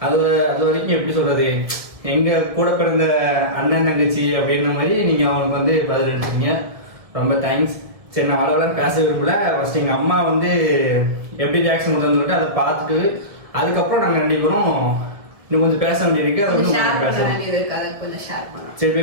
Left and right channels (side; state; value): left; late; 1.7 ms